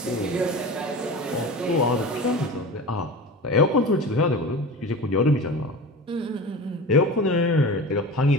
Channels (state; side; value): normal; both; correlation 0.32